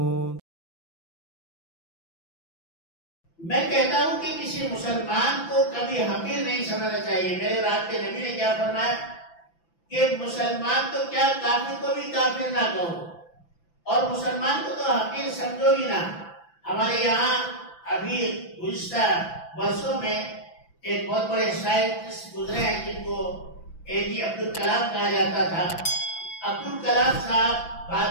میں کہتا ہوں کہ کسی مسلمان کو کبھی حقیر نہیں سمجھنا چاہیے۔ میرے رات کے نبی نے کیا فرمایا کہ مسلمان تو کیا کافر کو بھی کافر نہ کہو اور مسلمان کو تو حقیر سمجھو ہی نہ۔ ہمارے یہاں ابھی گزشتہ برسوں میں ایک بہت بڑے سائنٹسٹ گزرے ہیں جن کو APJ عبدالکلام کہا جاتا تھا۔ عبدالکلام صاحب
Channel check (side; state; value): right; late; 5.9 ms